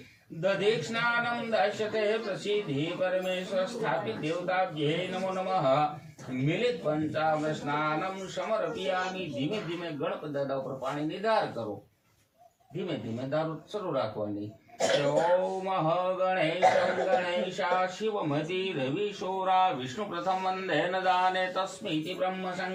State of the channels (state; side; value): identical; both; correlation 1.00